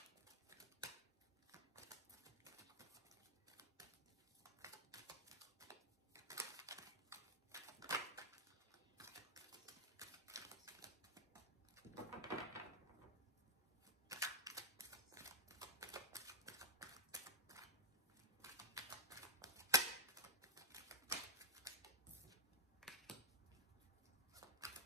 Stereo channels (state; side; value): normal; both; correlation -0.04